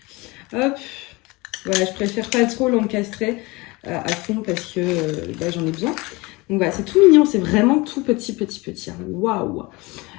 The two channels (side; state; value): right; quieter; 23.9 dB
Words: Hop, voilà, je préfère pas trop l'encastrer à fond parce que j'en ai besoin. Donc voilà, c'est tout mignon, c'est vraiment tout petit. Hein. Waouh.